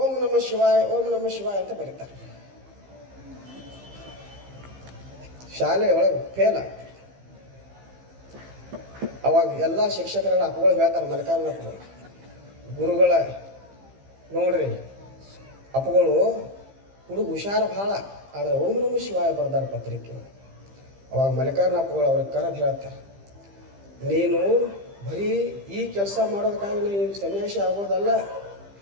ನಮಃ ಶಿವಾಯ ಓಂ ನಮಃ ಶಿವಾಯ ಅಂತ ಬರೀತಾರೆ. ಶಾಲೆಯೊಳಗೆ ಫೇಲ್ ಆಗ್ತಾರೆ. ಅವಾಗ ಎಲ್ಲ ಶಿಕ್ಷಕರೆಲ್ಲ ಅಪ್ಪಗಳು ಹೇಳ್ತಾರೆ, ಮಲ್ಲಿಕಾರ್ಜುನಪ್ಪಗಳು ಗುರುಗಳ ನೋಡ್ರಿ ಅಪ್ಪಗಳು ಹುಡುಗ ಹುಷಾರ ಭಾಳ, ಆದ್ರೆ ಓಂ ನಮಃ ಶಿವಾಯ ಬರ್ದಾರ ಪತ್ರಿಕೆ. ಅವಾಗ ಮಲ್ಲಿಕಾರ್ಜುನಪ್ಪಗಳು ಅವ್ರಿಗೆ ಕರೆದು ಹೇಳ್ತಾರೆ, ನೀನು ಬರೀ ಈ ಕೆಲಸ ಮಾಡೋದಕ್ಕಾಗಿ ನೀನು ಸನ್ಯಾಸಿ ಆಗೋದಲ್ಲ,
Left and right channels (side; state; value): left; late; 15 ms